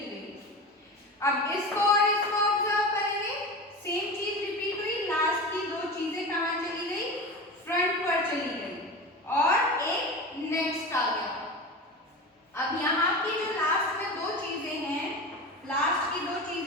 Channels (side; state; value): both; normal; correlation 0.28